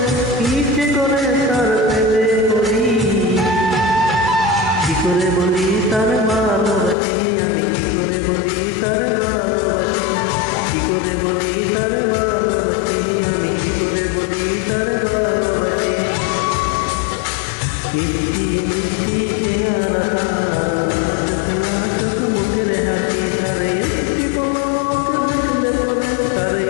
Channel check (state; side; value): drops out; right; at 7.0 s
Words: ইচ্ছে করে তার প্রেমে পড়ি। কি করে বলি তার ভালোবাসি, আমি কি করে বলি তার ভালোবাসি। কি করে বলি তার ভালোবাসি, আমি কি করে বলি তার ভালোবাসি। মিষ্টি মিষ্টি চেহারা তার, লাজুক লাজুক মুখের হাসি। তার একটি পলক দেখলে পরে, তার